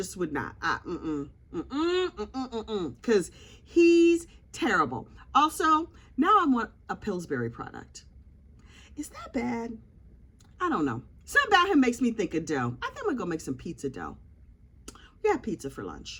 would not. Because he's terrible. Also, now I want a Pillsbury product. Is that bad? I don't know. Something about him makes me think of dough. I think I'm gonna go make some pizza dough. We had pizza for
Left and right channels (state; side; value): identical; both; correlation 1.00